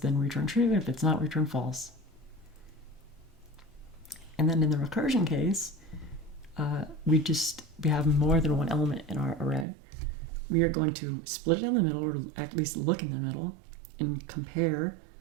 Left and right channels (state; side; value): drops out; left; at 9.7 s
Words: return true. If it's not, return false. And then in the recursion case, we have more than one element in our array. We are going to split it down the middle, or at least look in the middle, and compare